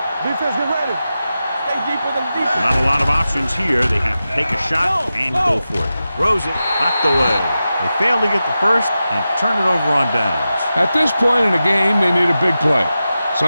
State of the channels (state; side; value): inverted; both; correlation -0.92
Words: Defense, get ready. Stay deeper than defense. Not a lot of options here. They have to take a shot and go for it. Throws it, knocked away. They fail to get the first and turn it over on downs. At this point in the game, they need a big play.